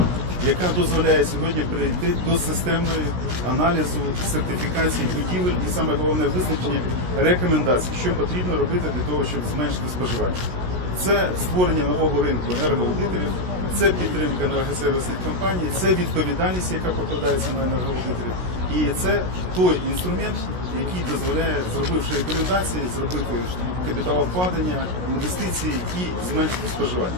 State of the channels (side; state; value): left; late; 16 ms